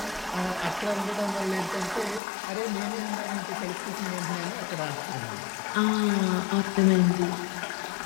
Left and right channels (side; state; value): right; drops out; at 2.2 s